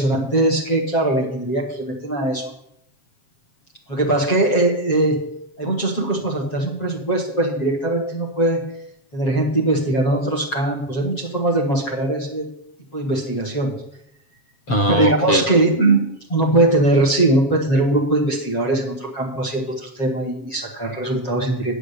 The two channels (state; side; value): late; right; 7.4 ms